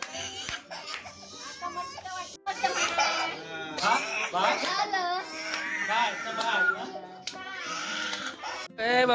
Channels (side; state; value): both; identical; correlation 1.00